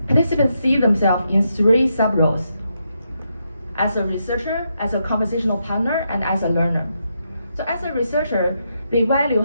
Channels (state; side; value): inverted; both; correlation -0.81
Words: participants see themselves in 3 sub-roles: as a researcher, as a conversational partner, and as a learner. So as a researcher, they